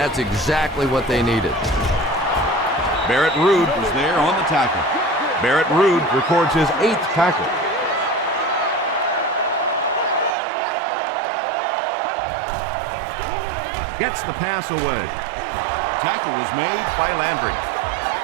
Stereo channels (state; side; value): drops out; left; at 10.4 s